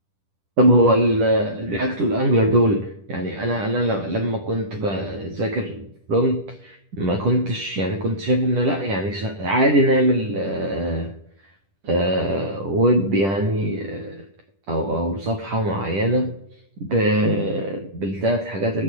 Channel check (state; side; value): late; left; 10 ms